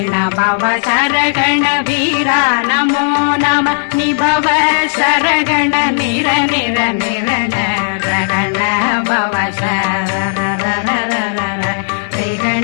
பவ சரகண வீரா நமோ நம நிபவ சரகண நிர நிர நிரண ரகண பவ சரரரரரர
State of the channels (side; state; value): right; silent; digital silence